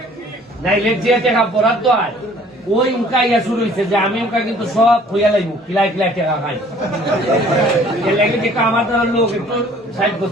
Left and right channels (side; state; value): both; normal; correlation 0.55